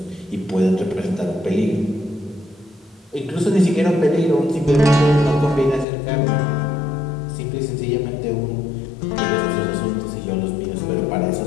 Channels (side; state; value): right; drops out; at 5.9 s